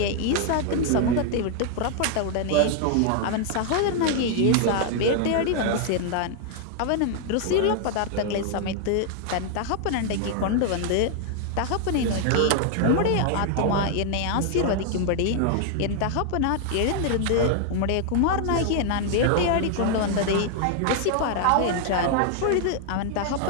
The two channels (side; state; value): both; different; correlation 0.00